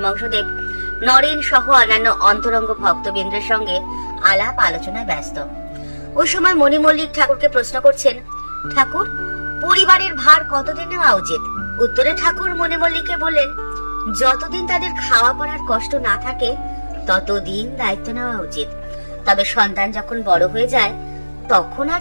নরেন সহ অন্যান্য অন্তরঙ্গ ভক্তবৃন্দের সঙ্গে আলাপ আলোচনায় ব্যস্ত। ওই সময় মণি মল্লিক ঠাকুরকে প্রশ্ন করছেন, ঠাকুর, পরিবারের ভার কতদিন নেওয়া উচিত? উত্তরে ঠাকুর মণি মল্লিককে বললেন, যতদিন তাদের খাওয়া পড়ার কষ্ট না থাকে ততদিন দায়িত্ব নেওয়া উচিত। তবে সন্তান যখন বড় হয়ে যায় তখন আর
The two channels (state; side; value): inverted; both; correlation -1.00